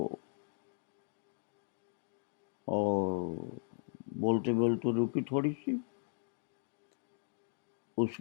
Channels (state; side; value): silent; right; digital silence